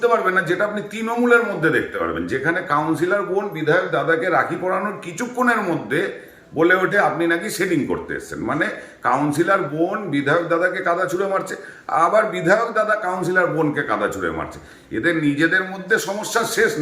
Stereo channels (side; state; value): both; identical; correlation 1.00